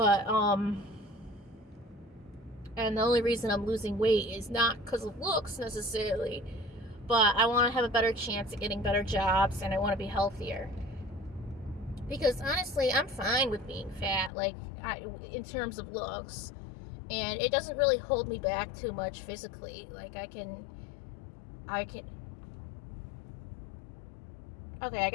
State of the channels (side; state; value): right; drops out; at 14.3 s